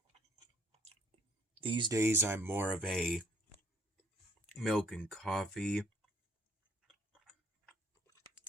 These days, I'm more of a milk and coffee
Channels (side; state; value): both; normal; correlation 0.61